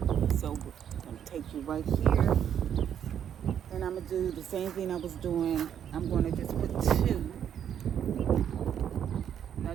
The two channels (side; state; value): left; quieter; 9.1 dB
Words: So I'm going to take you right here, and I'm going to do the same thing I was doing. I'm going to just put two.